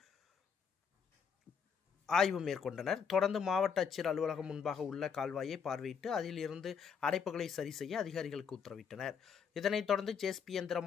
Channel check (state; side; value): quieter; right; 6.7 dB